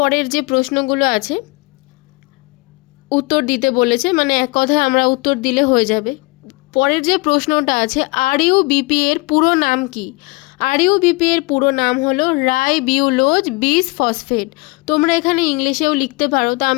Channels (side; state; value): right; quieter; 26.2 dB